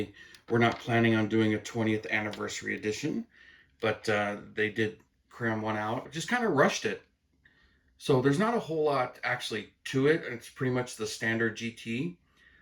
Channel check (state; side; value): identical; both; correlation 1.00